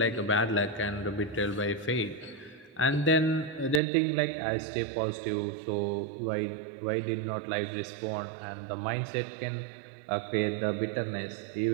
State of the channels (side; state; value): left; drops out; at 3.8 s